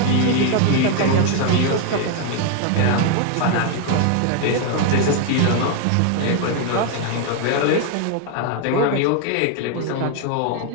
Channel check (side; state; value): both; different; correlation 0.00